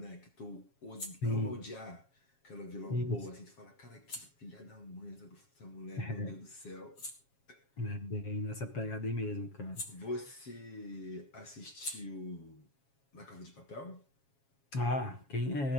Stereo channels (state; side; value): late; right; 7.3 ms